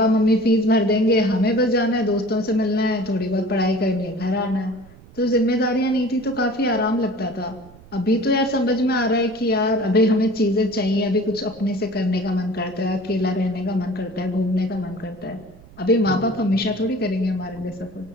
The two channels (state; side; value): noise; right; rumble, 23 dB below the sound